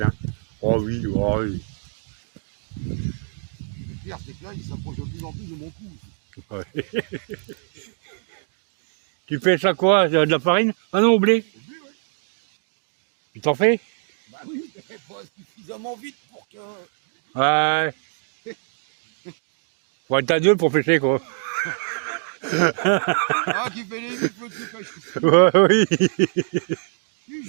Oh oui, oh oui. Le pire, c'est que là, il s'approche de plus en plus de mon cou. Ouais. Tu pêches à quoi? De la farine? Ah non, au blé? Au blé, ouais. Tu t'en fais? Bah oui, mais pas suffisamment vite pour que... Ouais. Faut être à deux pour pêcher, quoi. Ah, qui fait les vies, faut qu'il pêche. Ouais, oui.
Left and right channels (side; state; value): left; silent; 60 dB below the other